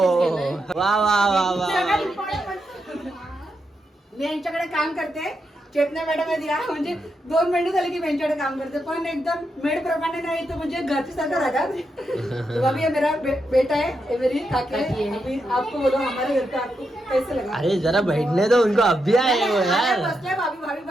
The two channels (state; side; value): normal; both; correlation 0.84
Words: वा वा वा वा मी यांच्याकडे काम करते. चेतना मॅडम दिला म्हणजे 2 महिने झाले की मी यांच्याकडे काम करते. पण एकदम मेड प्रमाणे नाही तो म्हणजे घरची सारखं राहतात. तो अभी ये मेरा बेटा है, ये मेरी काकी है. अभी आपको बोलो हमारे घर पे आपको कैसे लगा? अरे जरा बैठने दो उनको अभी आए हो यार. बसले भाभी भाभी